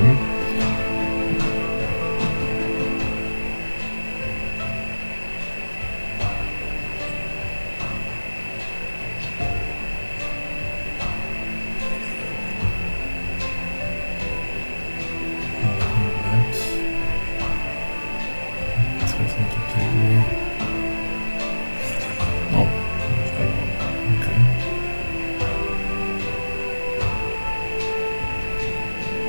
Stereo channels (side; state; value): both; inverted; correlation -1.00